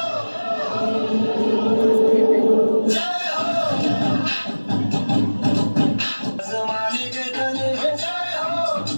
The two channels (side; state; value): both; inverted; correlation -1.00